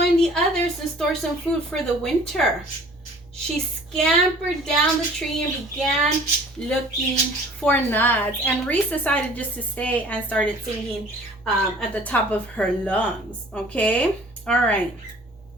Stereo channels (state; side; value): normal; both; correlation 0.50